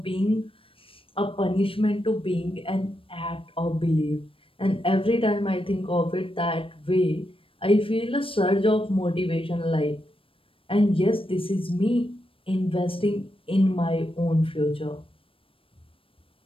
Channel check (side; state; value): right; late; 0.26 ms